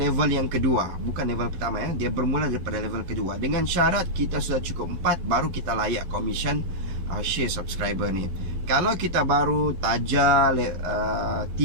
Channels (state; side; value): late; left; 11 ms